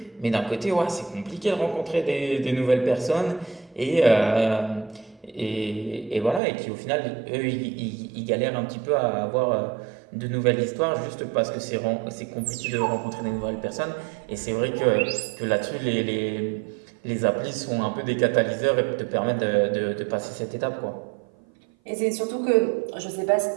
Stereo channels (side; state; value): left; drops out; at 6.4 s